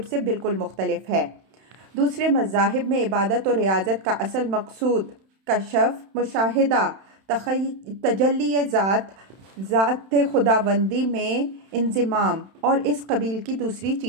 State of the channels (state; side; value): late; left; 31 ms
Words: سے بالکل مختلف ہے۔ دوسرے مذاہب میں عبادت و ریاضت کا اصل مقصود کشف، مشاہدہ، تجلی ذات خداوندی میں انضمام اور اس قبیل کی دوسری